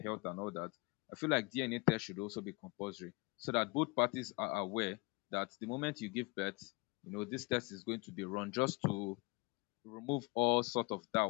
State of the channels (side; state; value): right; quieter; 27.1 dB